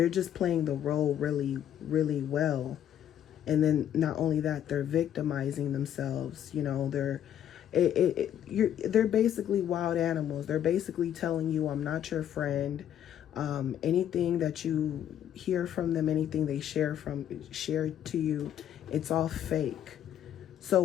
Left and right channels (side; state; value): right; quieter; 10.3 dB